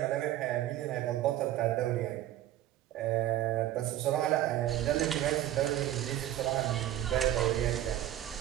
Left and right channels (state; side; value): quieter; left; 13.0 dB